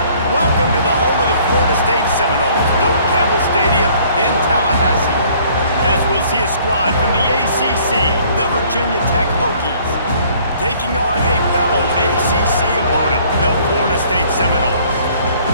Welcome to the home of the Florida State Seminoles, Doak Campbell Stadium in Tallahassee. As we'll see a squad from the ACC, the Virginia Tech Hokies, taking on a fellow ACC opponent, the Florida State Seminoles.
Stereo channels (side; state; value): both; inverted; correlation -0.58